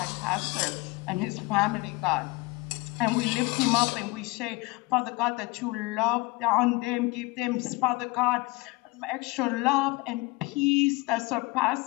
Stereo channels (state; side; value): quieter; right; 23.1 dB